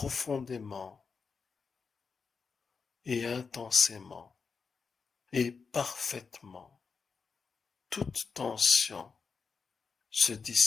et intensément et parfaitement. Toute tension se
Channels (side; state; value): right; quieter; 5.3 dB